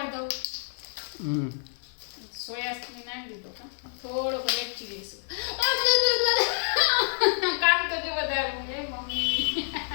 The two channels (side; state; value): right; silent; digital silence